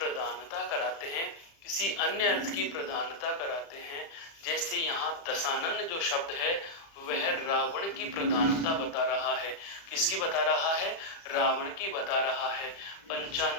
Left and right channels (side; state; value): right; late; 35 ms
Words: कराते हैं, किसी अन्य अर्थ की प्रधानता कराते हैं, जैसे यहाँ दशानन जो शब्द है वह रावण की प्रधानता बता रहा है। किसकी बता रहा है, रावण की बता रहा है।